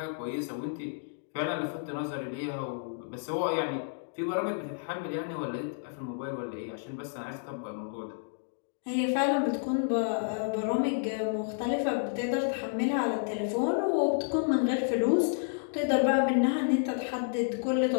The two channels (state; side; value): silent; right; digital silence